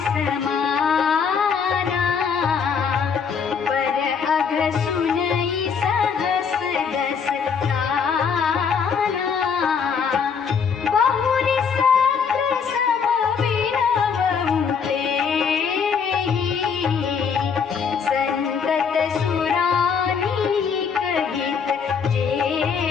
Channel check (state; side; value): quieter; right; 6.3 dB